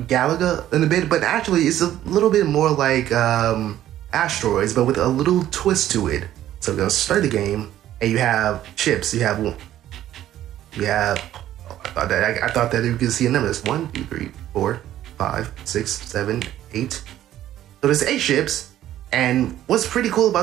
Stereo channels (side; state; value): left; quieter; 12.6 dB